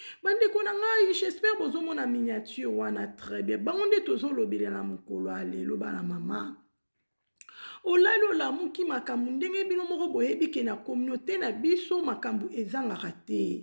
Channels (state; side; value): inverted; both; correlation -1.00